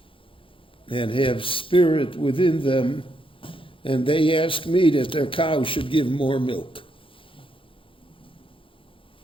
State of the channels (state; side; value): late; right; 0.25 ms